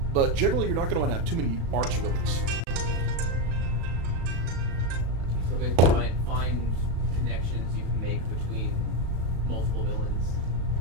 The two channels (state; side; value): late; left; 36 ms